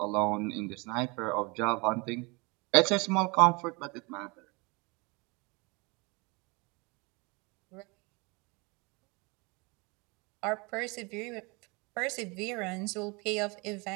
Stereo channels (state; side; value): quieter; left; 28.0 dB